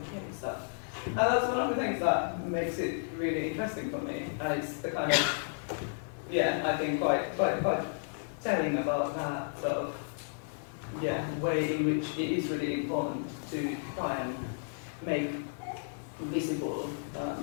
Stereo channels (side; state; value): right; silent; 56 dB below the other